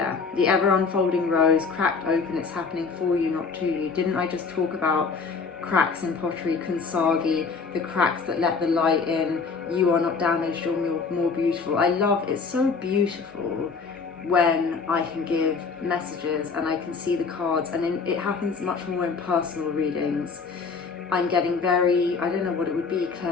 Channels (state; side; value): quieter; right; 5.0 dB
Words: the ever unfolding rose, cracked open, it's happening for you, not to you. Didn't I just talk about cracks in pottery, Kansagi, the cracks that let the light in? You are not damaged, you're more beautiful. I love, it's so beautiful when I can give messages and I can see the cards, and then it happens much more in personal readings. I'm getting very, I don't know what it would be,